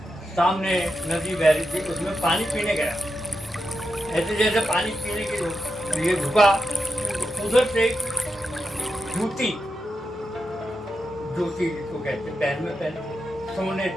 सामने नदी बह रही थी, उसमें पानी पीने गया। ऐसे जैसे पानी पीने के लिए झुका, उधर से जूती जिसको कहते पैर में पहने सोने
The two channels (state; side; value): normal; both; correlation 0.88